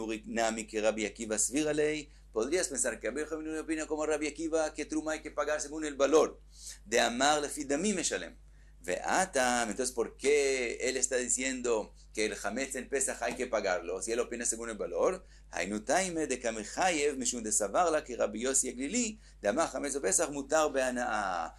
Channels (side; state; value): both; identical; correlation 1.00